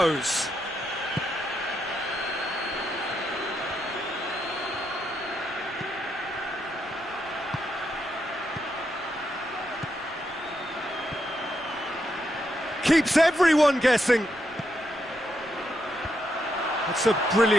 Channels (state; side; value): noise; left; rumble, 25 dB below the sound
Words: Keeps everyone guessing. It's a